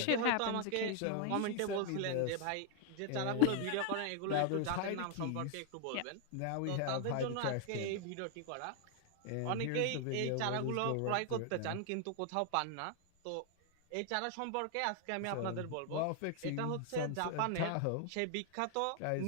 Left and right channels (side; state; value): both; different; correlation 0.00